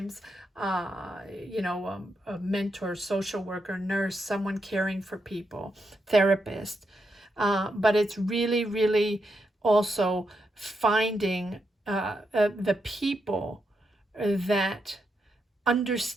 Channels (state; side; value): normal; both; correlation 0.83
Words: a mentor, social worker, nurse, someone caring for people, therapist. But it's really also finding the people that